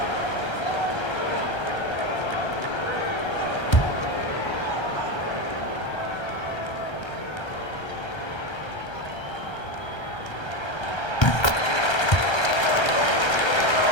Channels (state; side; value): late; right; 1.3 ms